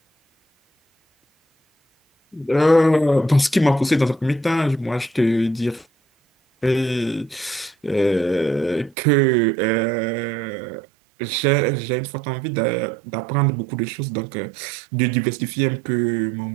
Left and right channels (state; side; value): drops out; left; at 9.0 s